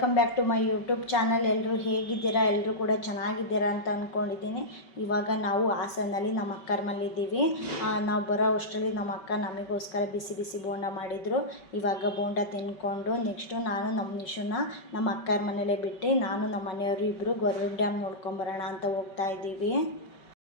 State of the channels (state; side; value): late; right; 5.3 ms